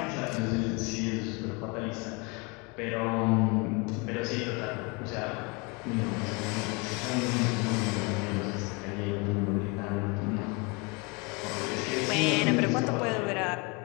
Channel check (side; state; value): right; quieter; 29.4 dB